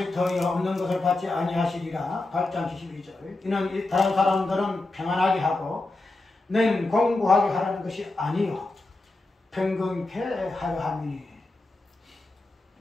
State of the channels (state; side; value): quieter; right; 3.0 dB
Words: 터이요 없는 것을 받지 아니하시리라. 8장 72절. 이는 다른 사람들은 평안하게 하고 너희는 공부하게 하라는 것이 아니요 평균케 하려 함이니